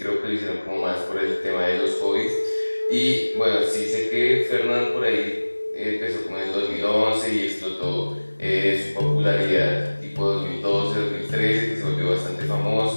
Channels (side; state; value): both; inverted; correlation -1.00